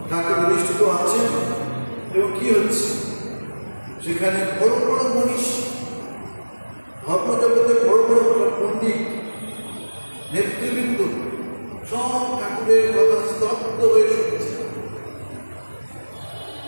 ঢাকা প্রতিষ্ঠিত আছে এবং কি হচ্ছে সেখানে বড় বড় মনীষ, ধর্মজগতের বড় বড় পণ্ডিত, নেতৃবৃন্দ সব ঠাকুরের কথা স্তব্ধ হয়ে শুনছে,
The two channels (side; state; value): both; inverted; correlation -1.00